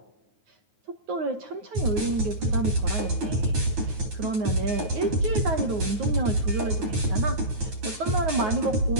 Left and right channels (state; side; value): late; left; 9.4 ms